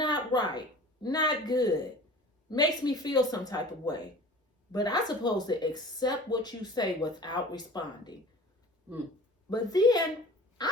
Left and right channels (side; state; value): both; normal; correlation 0.42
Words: right, not good, makes me feel some type of way. But I'm supposed to accept what you say without responding. But then